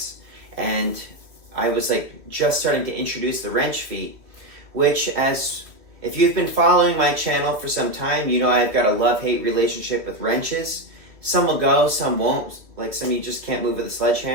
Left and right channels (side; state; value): left; late; 2.6 ms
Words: and I was like just starting to introduce the wrench feat, which, as if you've been following my channel for some time, you know I've got a love-hate relationship with wrenches. Some will go, some won't. Like some you just can't move with a